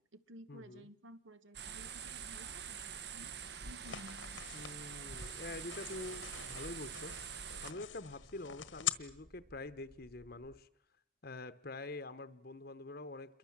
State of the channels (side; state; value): both; normal; correlation 0.13